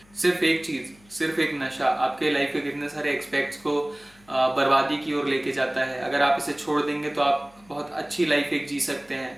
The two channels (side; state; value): left; noise; hum, 28 dB below the sound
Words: सिर्फ एक चीज़, सिर्फ एक नशा आपके लाइफ के कितने सारे एक्सपेक्ट्स को बर्बादी की ओर लेके जाता है। अगर आप इसे छोड़ देंगे तो आप बहुत अच्छी लाइफ एक जी सकते